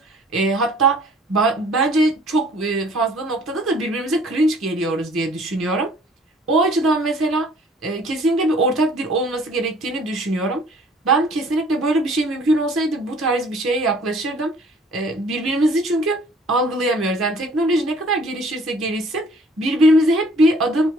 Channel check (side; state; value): both; normal; correlation 0.55